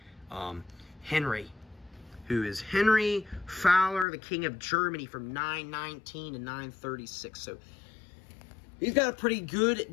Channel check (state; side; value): drops out; right; at 4.0 s